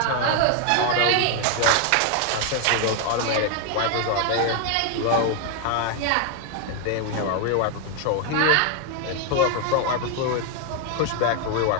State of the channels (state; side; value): different; both; correlation 0.01